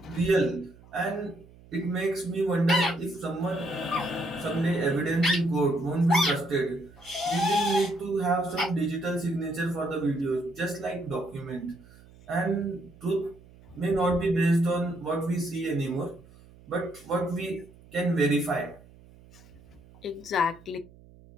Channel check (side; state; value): right; noise; hum, 23 dB below the sound